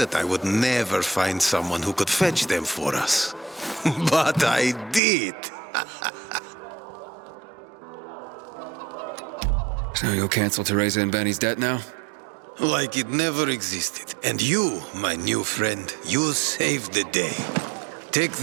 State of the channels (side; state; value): left; drops out; at 5.0 s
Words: I would never find someone who could fetch them for us. But I did. So you'll cancel Teresa and Benny's debt now? Like it never existed. And you, my new friend, you saved the day. Take